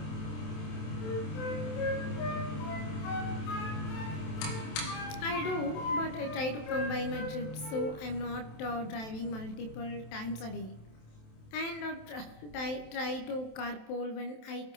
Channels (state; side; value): late; right; 27 ms